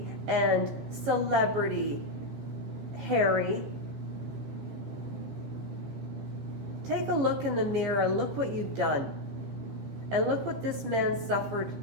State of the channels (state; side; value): late; left; 15 ms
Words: and celebrity, Harry. Take a look in the mirror, look what you've done. And look what this man suffered.